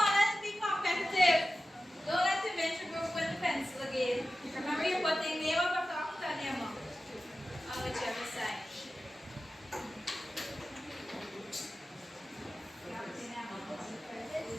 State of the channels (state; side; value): normal; both; correlation 0.94